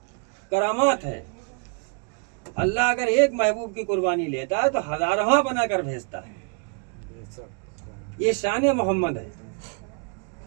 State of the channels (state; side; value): quieter; left; 38.8 dB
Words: करामात है। अल्लाह अगर एक महबूब की कुर्बानी लेता है तो हजारवा बनाकर भेजता है। ये शान मोहम्मद है।